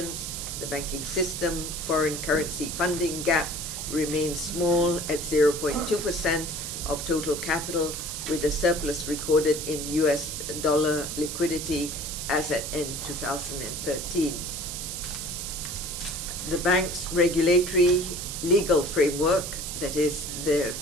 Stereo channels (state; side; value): noise; right; hiss, 6 dB below the sound